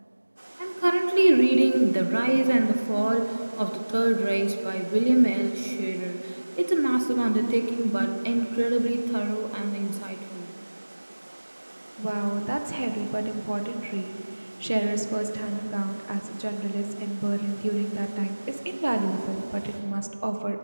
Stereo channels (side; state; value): both; inverted; correlation -1.00